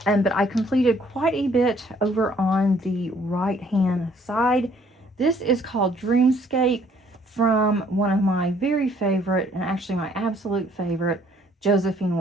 But I completed quite a bit over on the right-hand side. This is called Dreamscape from one of my very favorite, and actually my absolute favorite, Josephine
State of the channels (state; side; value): normal; both; correlation 0.62